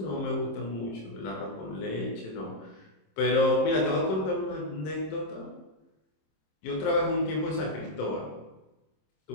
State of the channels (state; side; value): late; right; 26 ms